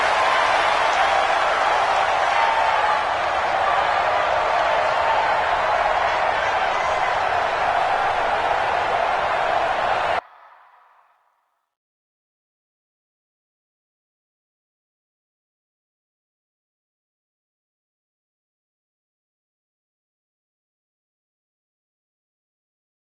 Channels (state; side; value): identical; both; correlation 1.00